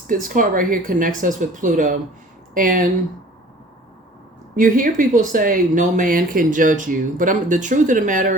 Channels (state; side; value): normal; both; correlation 0.48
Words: card right here connects us with Pluto. And you hear people say, no man can judge you. But the truth of the